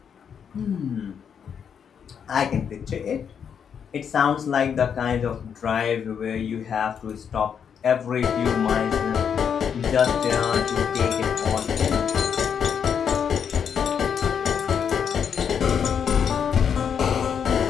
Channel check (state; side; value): quieter; right; 7.5 dB